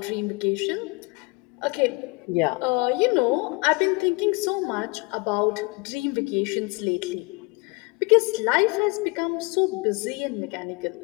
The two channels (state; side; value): quieter; right; 28.5 dB